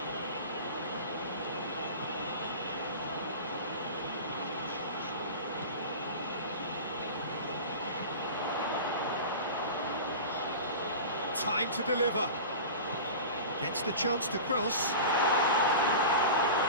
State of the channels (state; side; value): inverted; both; correlation -0.32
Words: Time to deliver. Gets the chance to cross.